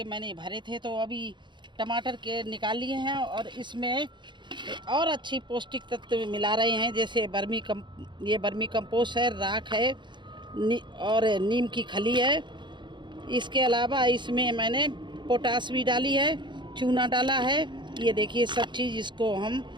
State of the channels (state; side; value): late; left; 0.23 ms